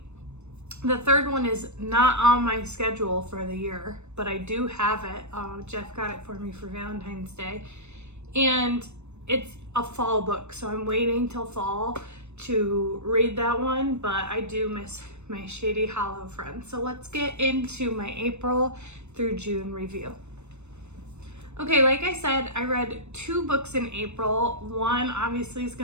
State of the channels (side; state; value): left; late; 0.82 ms